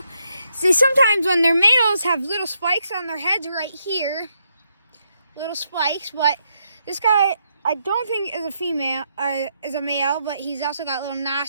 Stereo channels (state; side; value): inverted; both; correlation -0.79